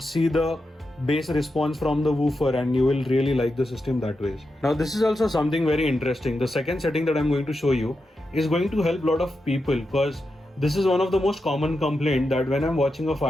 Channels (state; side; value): normal; both; correlation 0.88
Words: see the bass response from the woofer, and you will really like the system that way. Now this is also something very interesting. The second setting that I'm going to show you is going to help a lot of people, because this is one of the most common complaint that when I'm watching a